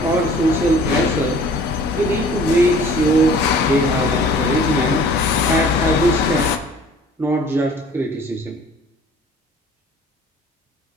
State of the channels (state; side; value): normal; both; correlation 0.50